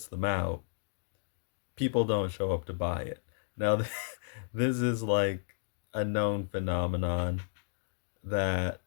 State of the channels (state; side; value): silent; right; digital silence